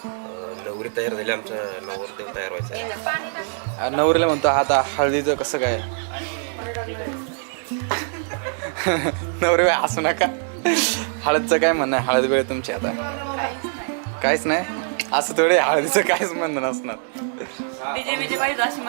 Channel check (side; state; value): left; silent; digital silence